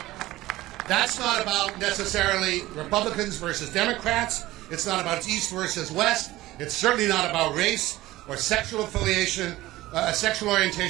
That's not about necessarily Republicans versus Democrats. It's not about East versus West. It's certainly not about race or sexual affiliation, sexual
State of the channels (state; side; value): quieter; left; 17.2 dB